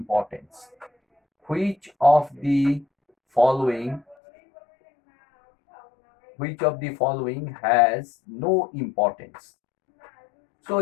Which of the following has no importance? So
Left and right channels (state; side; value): drops out; right; at 4.2 s